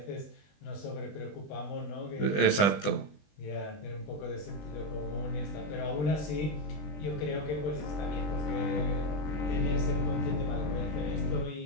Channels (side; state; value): right; late; 20 ms